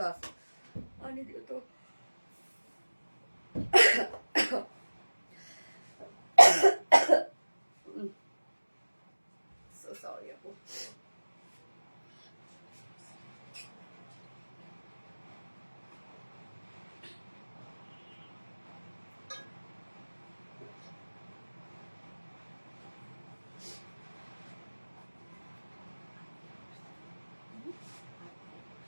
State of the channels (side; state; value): both; inverted; correlation -1.00